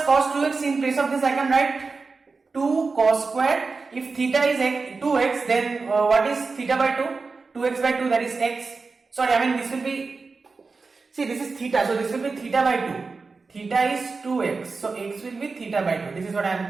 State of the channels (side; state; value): left; quieter; 4.3 dB